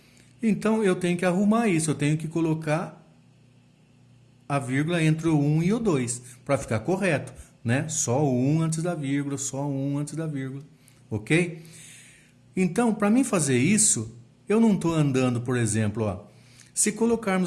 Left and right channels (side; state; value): both; identical; correlation 1.00